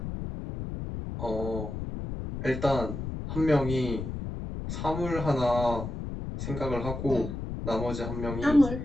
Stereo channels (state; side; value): noise; left; rumble, 6 dB below the sound